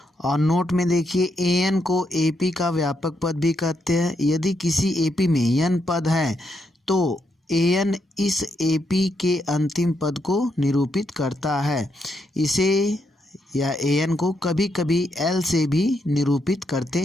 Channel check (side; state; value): both; normal; correlation 0.79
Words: और नोट में देखिए, ए एन को एपी का व्यापक पद भी कहते हैं। यदि किसी एपी में एन पद है तो ए एन इस एपी के अंतिम पद को निरूपित करता है। इसे या ए एन को कभी कभी एल से भी निरूपित करते